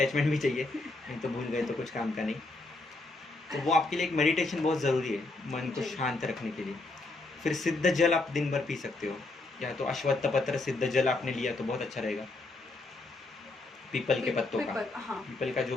भी चाहिए, नहीं तो भूल गए तो कुछ काम का नहीं। तो वो आपके लिए एक मेडिटेशन बहुत ज़रूरी है, मन को शांत रखने के लिए। फिर सिद्ध जल आप दिन भर पी सकते हो, या तो अश्वत्थ पत्र सिद्ध जल आपने लिया तो बहुत अच्छा रहेगा। पीपल के पत्तों का, पीपल का जो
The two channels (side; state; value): right; quieter; 3.2 dB